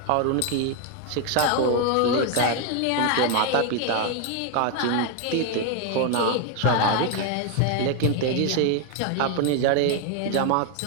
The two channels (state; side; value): different; both; correlation 0.01